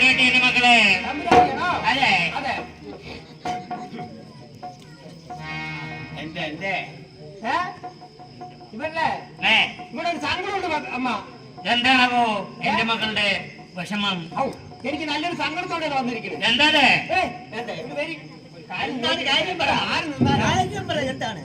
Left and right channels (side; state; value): both; identical; correlation 1.00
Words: മക്കളെ. അതെ, എന്റെ ഇവിടെ ഒരു സങ്കടമുണ്ട് അമ്മ. എന്താണോ എന്റെ മക്കളുടെ വിഷമം? എനിക്ക് നല്ലൊരു സങ്കടത്തോടെ വന്നിരിക്കുന്നത്. എന്താണ് കാര്യം പറ. എന്താണ്